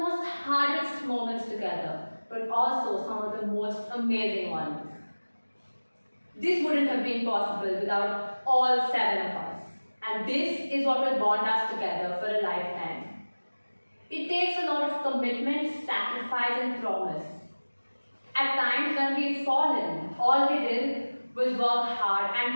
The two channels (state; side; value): inverted; both; correlation -1.00